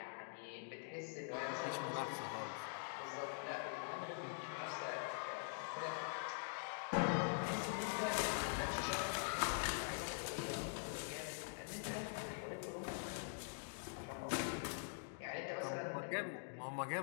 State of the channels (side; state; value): right; silent; digital silence